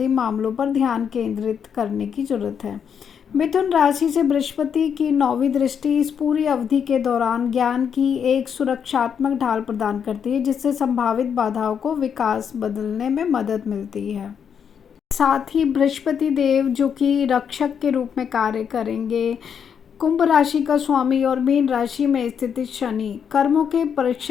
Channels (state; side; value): quieter; right; 7.5 dB